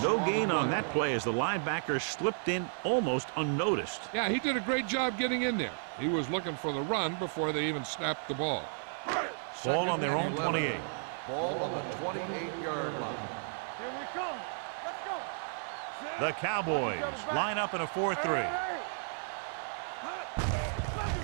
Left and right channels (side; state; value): left; silent; 56 dB below the other